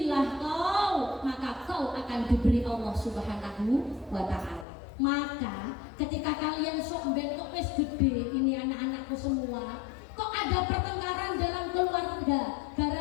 kau, maka kau akan diberi Allah Subhanahu wa Ta'ala. Maka ketika kalian sok bentuk wis gede, ini anak-anakku semua, kok ada pertengkaran dalam keluarga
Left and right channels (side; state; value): right; drops out; at 4.7 s